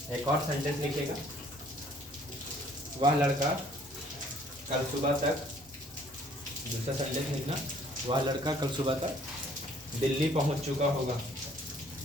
एक और सेंटेंस लिखिएगा, वह लड़का कल सुबह तक, दूसरा सेंटेंस लिखना, वह लड़का कल सुबह तक दिल्ली पहुंच चुका होगा,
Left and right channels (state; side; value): normal; both; correlation 0.59